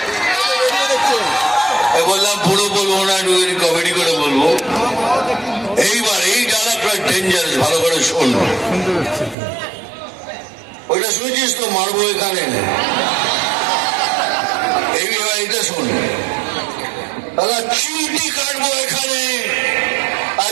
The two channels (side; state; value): left; drops out; at 9.3 s